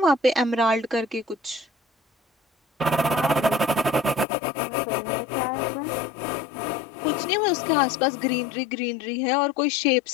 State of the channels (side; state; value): right; drops out; at 4.2 s